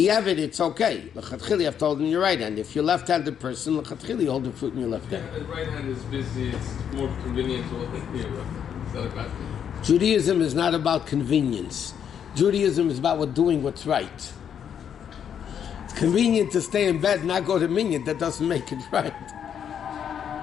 it's okay. L'chatchili, I've told in your right hand. If you're a left-handed person, l'chatchili, you hold the fruit in your left hand. Yeah, the right hand is busy. It's more convenient to hold it in your left hand. Is that a bad thing? Judaism is not about convenience. Judaism is about doing what's right. It's convenient to stay in bed and not go to minyan. That doesn't make it right.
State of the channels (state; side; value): quieter; right; 8.5 dB